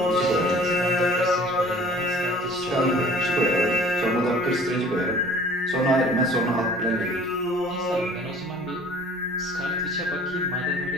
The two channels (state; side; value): normal; both; correlation 0.49